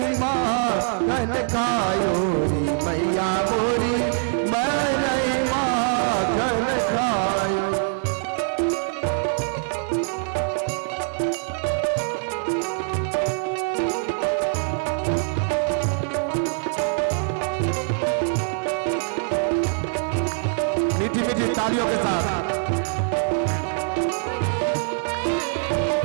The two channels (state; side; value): silent; left; digital silence